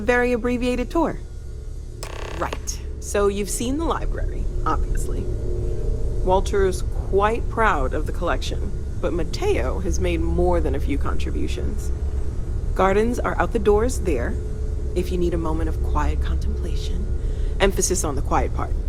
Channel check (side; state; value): both; identical; correlation 1.00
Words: abbreviated tour. Right. So you've seen the library, obviously. Walter's quite proud of the collection, but Mateo has made more than a few contributions. Gardens are out the doors there, if you need a moment of quiet contemplation. Emphasis on the quiet part,